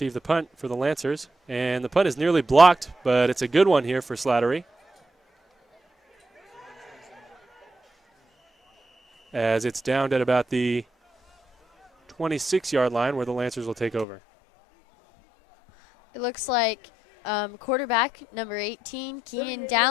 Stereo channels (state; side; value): drops out; right; at 14.1 s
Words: the punt for the Lancers. And the punt is nearly blocked, but it's a good one here for Slattery, as it's downed at about the 26-yard line where the Lancers will take over. It looks like quarterback number 18, Keenan